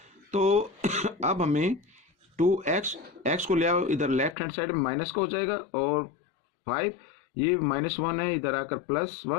तो अब हमें टू एक्स को ले आओ इधर लेफ्ट हैंड साइड में माइनस का हो जाएगा और फाइव ये माइनस वन है, इधर आकर प्लस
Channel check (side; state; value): right; drops out; at 4.4 s